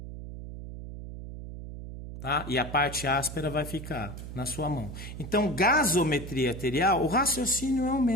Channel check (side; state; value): right; noise; hum, 10 dB below the sound